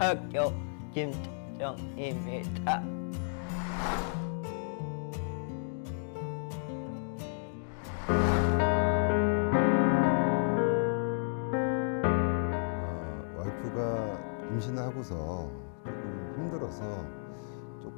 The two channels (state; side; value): silent; right; digital silence